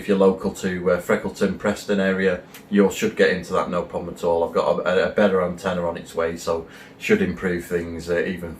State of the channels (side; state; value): both; identical; correlation 1.00